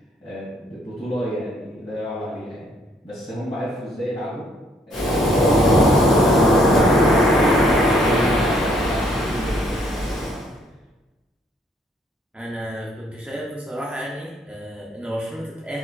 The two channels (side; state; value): both; normal; correlation 0.67